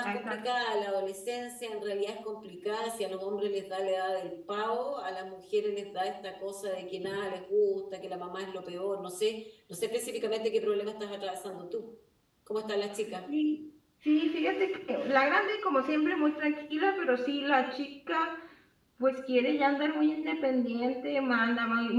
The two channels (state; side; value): identical; both; correlation 1.00